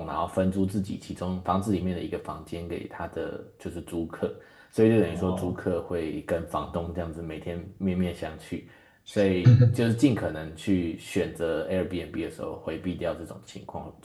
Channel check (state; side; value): identical; both; correlation 1.00